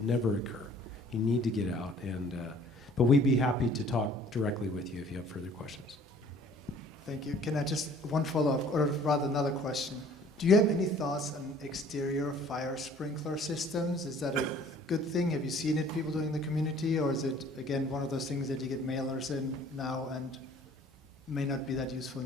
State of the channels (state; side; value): normal; both; correlation 0.53